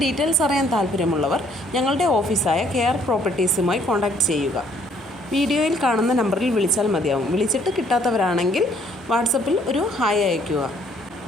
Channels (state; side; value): normal; both; correlation 0.63